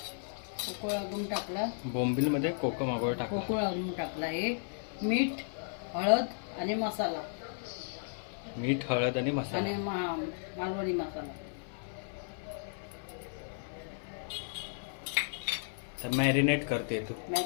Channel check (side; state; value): right; silent; 55 dB below the other